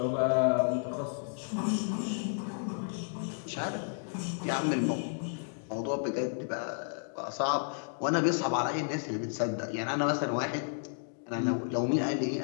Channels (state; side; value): silent; right; digital silence